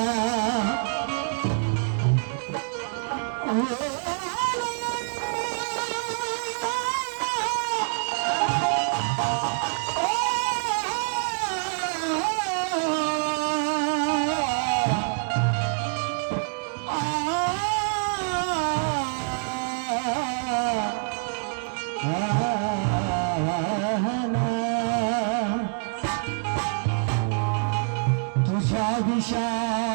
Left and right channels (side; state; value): left; silent; digital silence